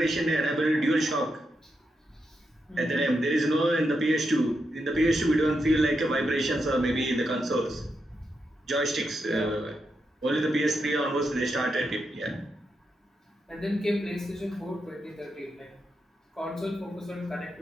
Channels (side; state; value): both; normal; correlation 0.84